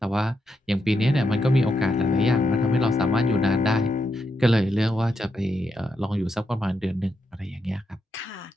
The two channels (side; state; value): both; normal; correlation 0.83